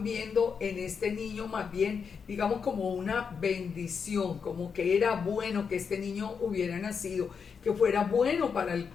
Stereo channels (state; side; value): quieter; right; 6.2 dB